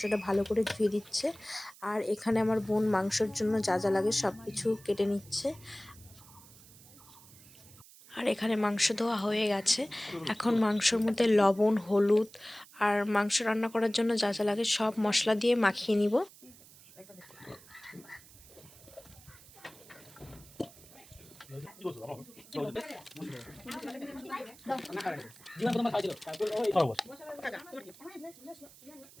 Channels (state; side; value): noise; right; hiss, 22 dB below the sound